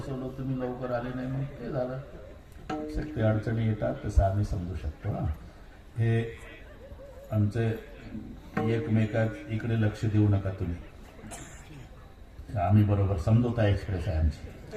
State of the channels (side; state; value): both; identical; correlation 1.00